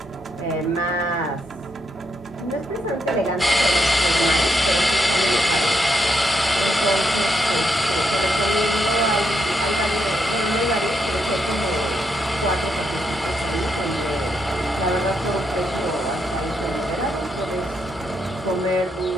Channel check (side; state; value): both; normal; correlation 0.79